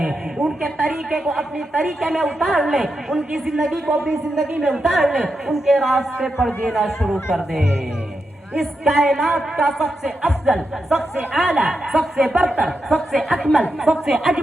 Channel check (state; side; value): normal; both; correlation 0.87